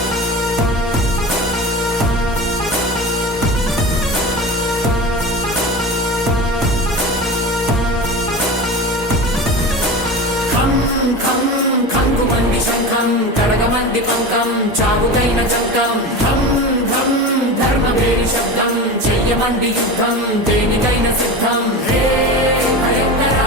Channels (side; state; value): both; normal; correlation 0.28